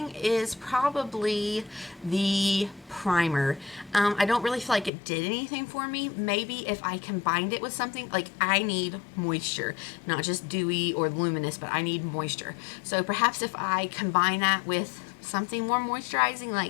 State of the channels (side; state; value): right; drops out; at 4.9 s